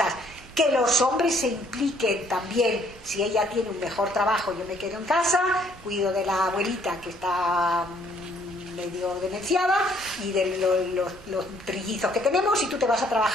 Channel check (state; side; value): normal; both; correlation 0.64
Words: que los hombres se impliquen también. Si ella tiene un mejor trabajo, yo me quedo en casa, cuido de la abuelita que está medio demenciada y de los trillizos que tenemos, y tú te vas a